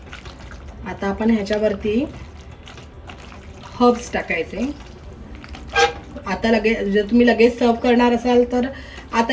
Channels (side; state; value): both; identical; correlation 1.00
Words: आता आपण ह्याच्यावरती हर्ब्स टाकायचे. आता लगेच जर तुम्ही लगेच सर्व करणार असाल तर आता